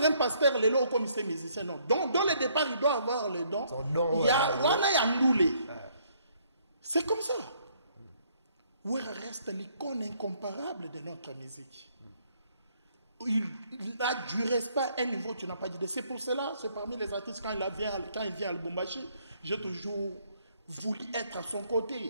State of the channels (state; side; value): inverted; both; correlation -0.67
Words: un pasteur, les lots comme c'est musicien, non. Donc, dans le départ, il doit avoir le don. Il y a Ndoulé. C'est comme ça. Ouera reste l'icône incomparable de notre musique. Il a du respect à un niveau tu n'as pas dit. C'est pour cela, c'est parmi les artistes, quand il vient à Lubumbashi, j'ai toujours voulu être à son